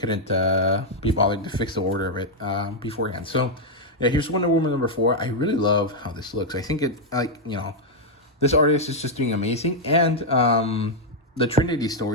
be bothered to fix the order of it beforehand. So, yeah, here's Wonder Woman number 4. I really love how this looks. I think this artist is just doing amazing. And the Trinity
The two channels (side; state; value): both; normal; correlation -0.01